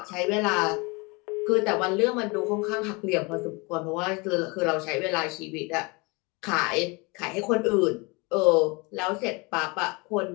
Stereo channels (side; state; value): right; quieter; 27.6 dB